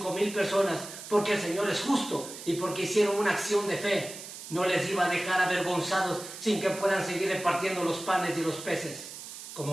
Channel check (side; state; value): right; noise; hiss, 12 dB below the sound